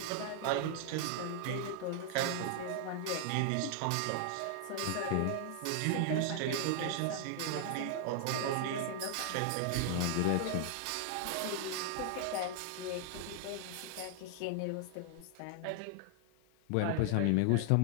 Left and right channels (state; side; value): different; both; correlation 0.00